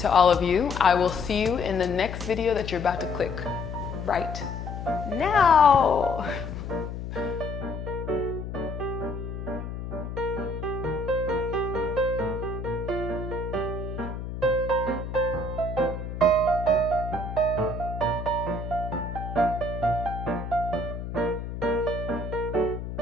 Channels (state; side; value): noise; left; hum, 7 dB below the sound